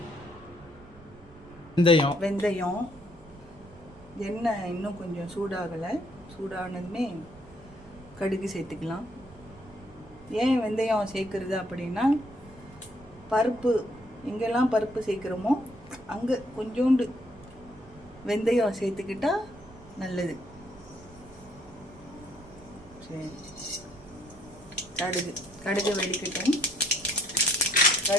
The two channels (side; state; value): right; noise; rumble, 22 dB below the sound